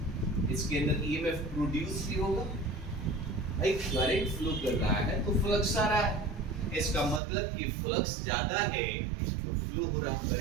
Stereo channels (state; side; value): drops out; left; at 7.2 s